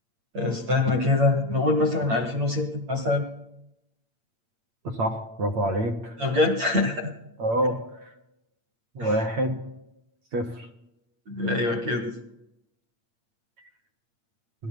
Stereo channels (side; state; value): left; late; 8.8 ms